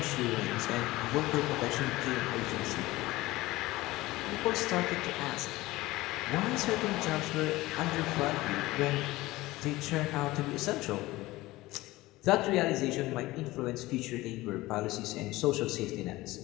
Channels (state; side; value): quieter; right; 18.9 dB